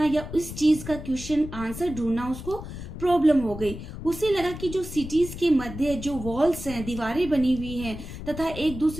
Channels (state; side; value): noise; left; rumble, 10 dB below the sound